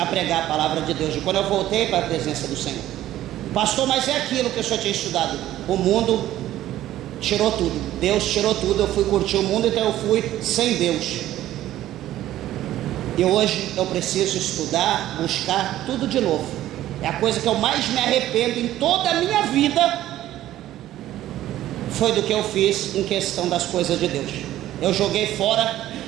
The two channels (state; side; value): quieter; left; 13.7 dB